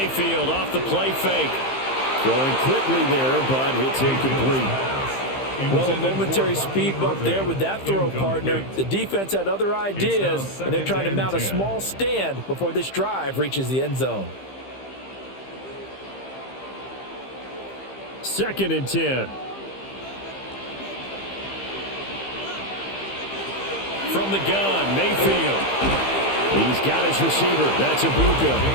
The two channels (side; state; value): right; late; 15 ms